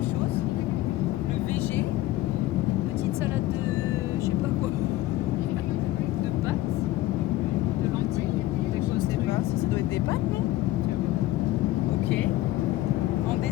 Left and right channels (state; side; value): quieter; right; 16.0 dB